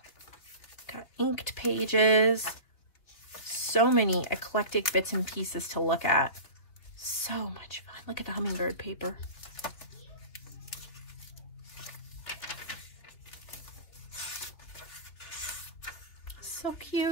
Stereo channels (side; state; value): right; late; 3.3 ms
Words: Got inked pages. So many eclectic bits and pieces to look at. So much fun. Look at the hummingbird paper. So